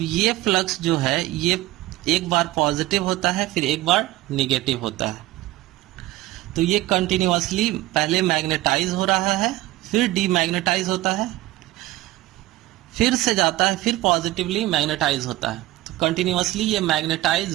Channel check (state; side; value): quieter; left; 17.3 dB